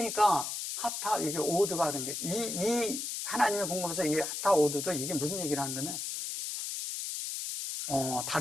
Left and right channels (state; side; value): noise; left; hiss, 4 dB below the sound